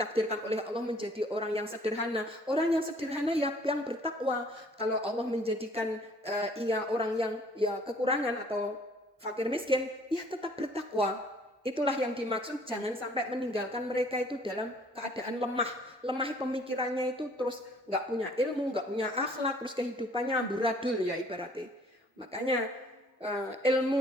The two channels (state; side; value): normal; both; correlation 0.57